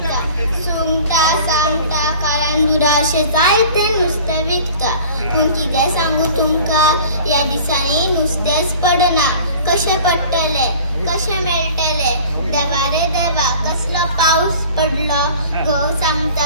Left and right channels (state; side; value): inverted; both; correlation -0.45